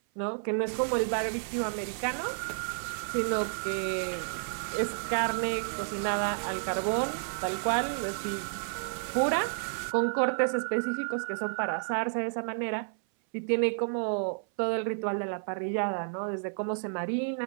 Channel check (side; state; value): left; silent; 56 dB below the other